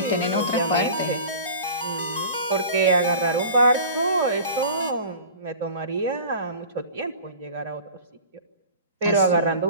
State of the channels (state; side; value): inverted; both; correlation -0.39